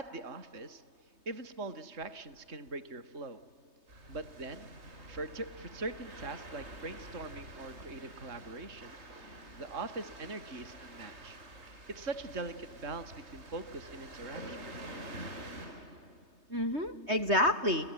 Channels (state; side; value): late; left; 3.2 ms